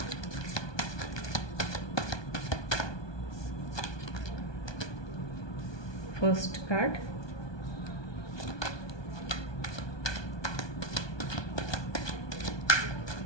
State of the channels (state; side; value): late; right; 1.2 ms